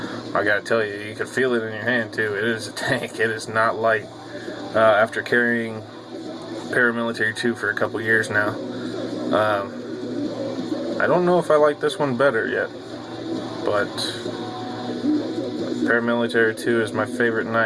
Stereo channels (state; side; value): identical; both; correlation 1.00